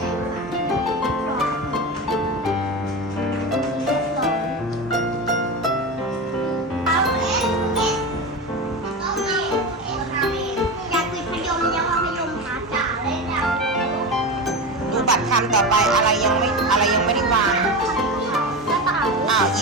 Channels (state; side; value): normal; both; correlation 0.22